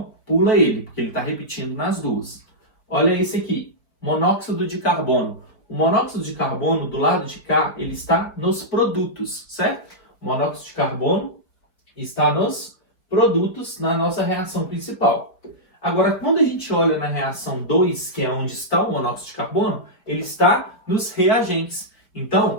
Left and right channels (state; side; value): late; right; 4.4 ms